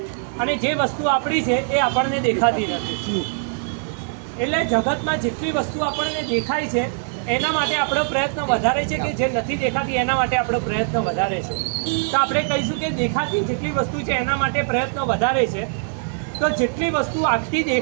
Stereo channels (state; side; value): silent; left; digital silence